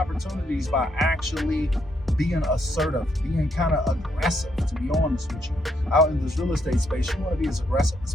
by actually being assertive, being kind of aggressive, to be honest with you. Out in this real estate space, you want to be as aggressive as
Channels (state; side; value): normal; both; correlation 0.75